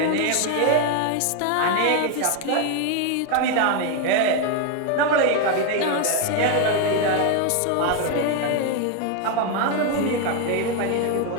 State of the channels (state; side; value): different; both; correlation 0.01